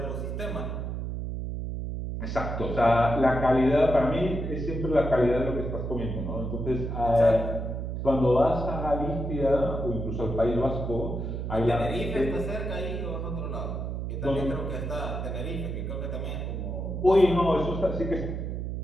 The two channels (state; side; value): noise; right; hum, 4 dB below the sound